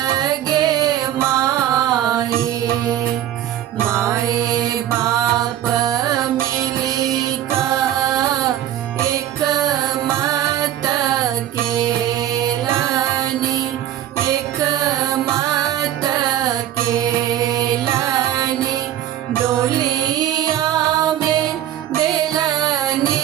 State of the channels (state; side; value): quieter; left; 12.0 dB